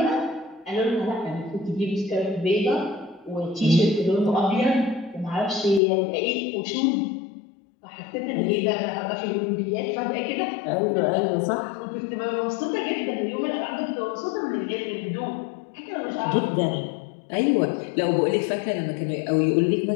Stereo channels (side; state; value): right; drops out; at 5.8 s